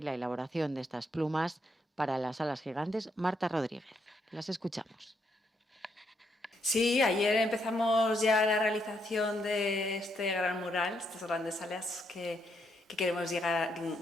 la elaboración de estas plumas para las salas gigantes, Marta Rodríguez. Las escuchamos. Sí, ayer empezamos ya la realización de este gran mural, estas grandes salas que queremos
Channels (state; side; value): normal; both; correlation 0.76